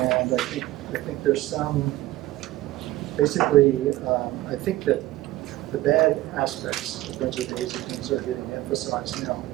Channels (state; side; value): quieter; left; 16.5 dB